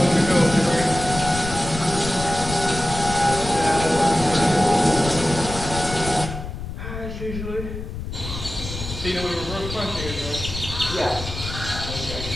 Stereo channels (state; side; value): noise; left; rumble, 8 dB below the sound